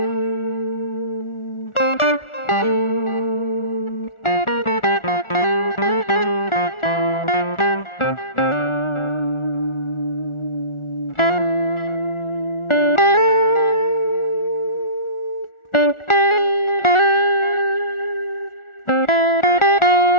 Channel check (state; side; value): late; right; 1.4 ms